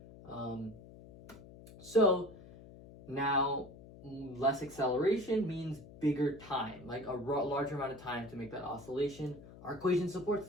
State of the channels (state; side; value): noise; left; hum, 18 dB below the sound